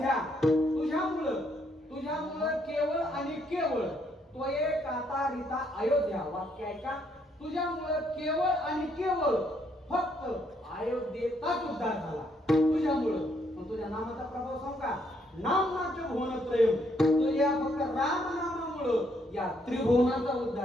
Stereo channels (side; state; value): both; normal; correlation 0.72